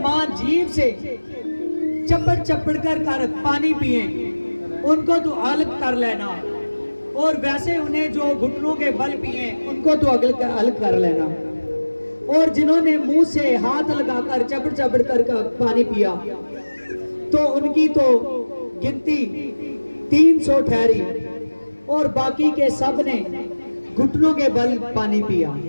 जीभ से चपड़ कर पानी पिए उनको तो अलग कर लेना, और वैसे उन्हें जो घुटनों के बल पिए उनको तो अलग कर लेना, और जिन्होंने मुंह से हाथ लगाकर चपड़ कर पानी पिया तो उनकी तो गिनती 300 ठहरी, और बाकी के सब ने घुटनों के बल पानी पिया।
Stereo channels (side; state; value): both; inverted; correlation -1.00